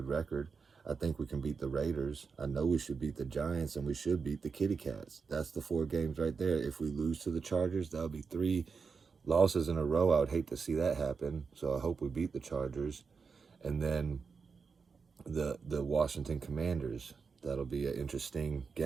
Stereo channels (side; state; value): left; quieter; 5.2 dB